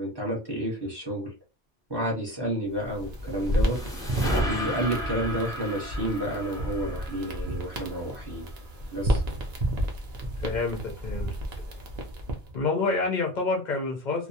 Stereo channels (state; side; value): normal; both; correlation 0.34